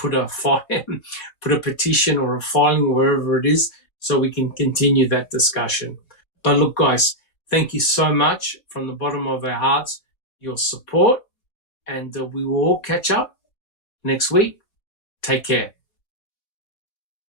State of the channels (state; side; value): late; right; 4.1 ms